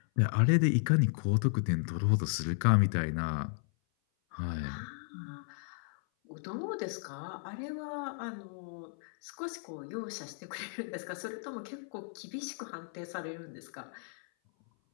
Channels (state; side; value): silent; right; 55 dB below the other